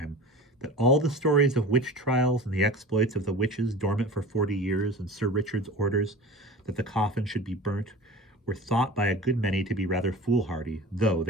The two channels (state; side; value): normal; both; correlation 0.37